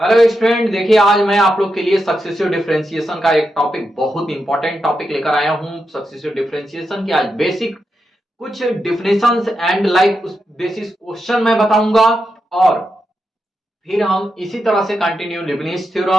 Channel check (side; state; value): both; normal; correlation 0.86